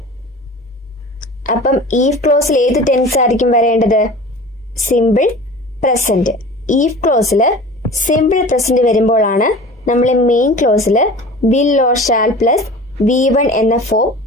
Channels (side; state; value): both; normal; correlation 0.39